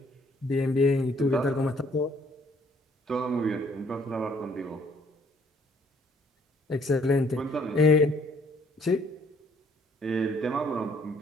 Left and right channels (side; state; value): both; normal; correlation 0.63